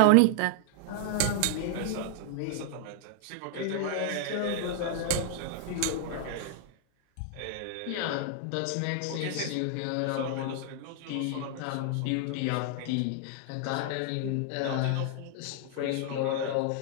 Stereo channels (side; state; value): both; different; correlation 0.00